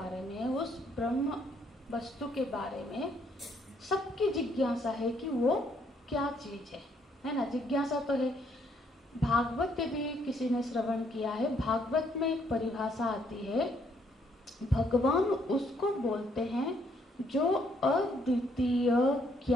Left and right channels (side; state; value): both; normal; correlation 0.70